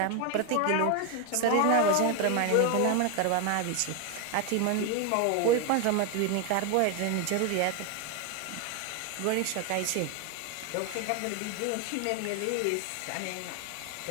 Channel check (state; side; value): different; both; correlation 0.01